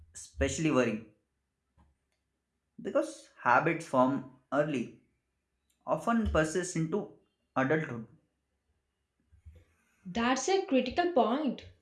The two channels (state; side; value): identical; both; correlation 1.00